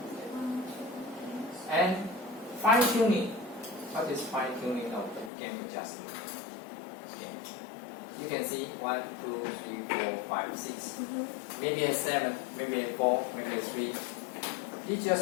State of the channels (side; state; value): right; drops out; at 5.3 s